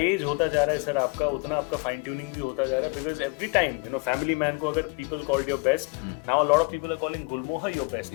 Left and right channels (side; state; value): right; quieter; 30.6 dB